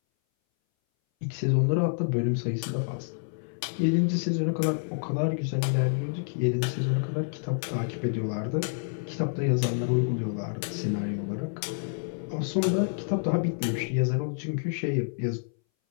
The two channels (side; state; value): right; silent; 59 dB below the other